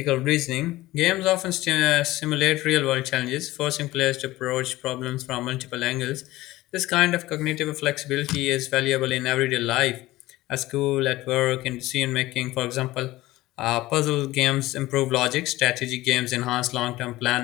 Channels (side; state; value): right; quieter; 17.7 dB